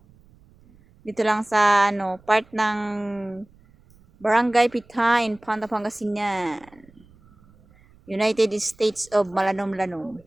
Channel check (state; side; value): noise; right; rumble, 28 dB below the sound